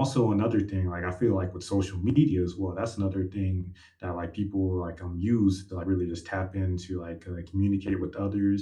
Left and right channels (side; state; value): both; identical; correlation 1.00